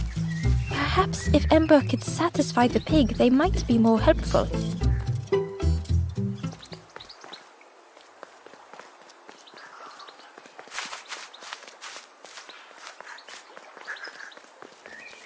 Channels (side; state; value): both; identical; correlation 1.00